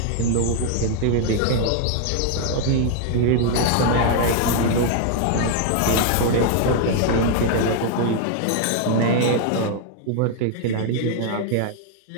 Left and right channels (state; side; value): different; both; correlation 0.00